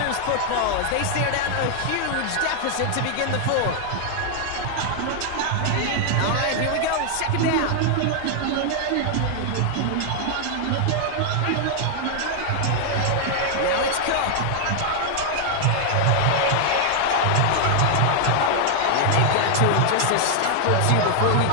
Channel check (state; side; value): different; both; correlation 0.00